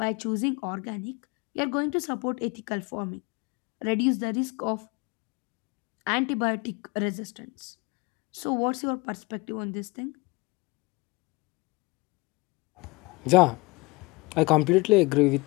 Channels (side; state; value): right; quieter; 25.5 dB